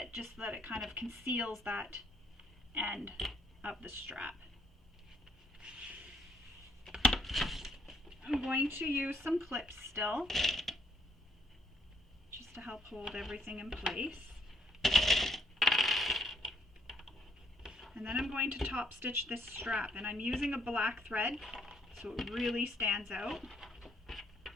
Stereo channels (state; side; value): normal; both; correlation 0.68